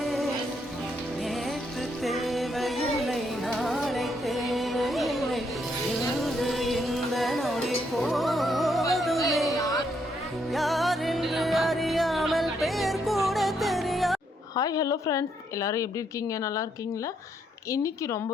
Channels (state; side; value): normal; both; correlation 0.74